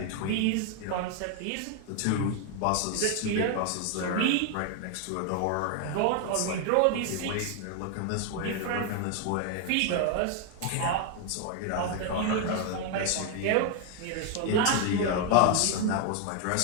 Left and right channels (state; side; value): different; both; correlation 0.00